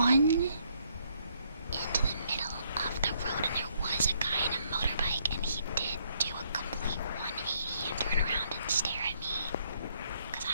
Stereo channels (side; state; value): both; inverted; correlation -0.71